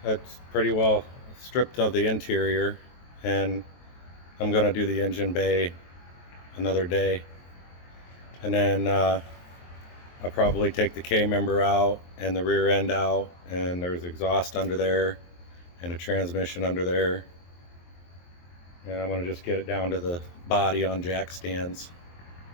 that's pretty well stripped of the interior, and I'm gonna do the engine bay another day. And then I'll probably take the K-member out and the rear end out, and there's exhaust under there and a transmission under there. And I'm gonna just get it down to the body on jack stands.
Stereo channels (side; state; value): right; late; 23 ms